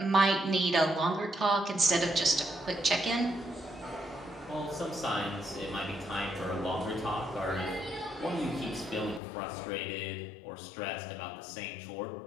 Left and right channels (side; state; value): right; drops out; at 9.2 s